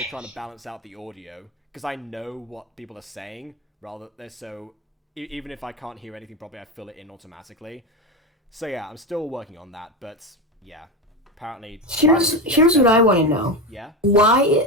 trying to balance out the audio because I know what people are saying. So even if I can't hear anything properly, I fill it in automatically. So yeah, I'm still working on that. But yeah, apparently. Here's what I want to know. Yeah.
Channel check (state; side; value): normal; both; correlation 0.18